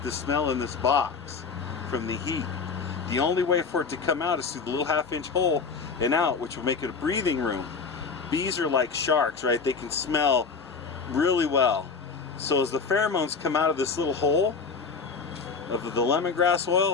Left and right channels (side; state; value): right; quieter; 5.1 dB